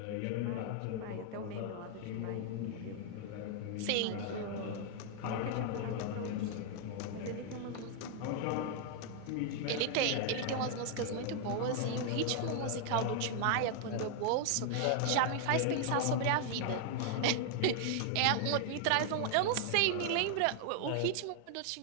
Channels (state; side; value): different; both; correlation 0.00